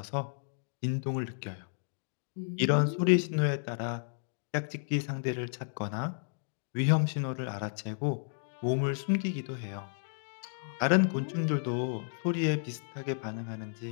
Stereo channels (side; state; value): right; silent; digital silence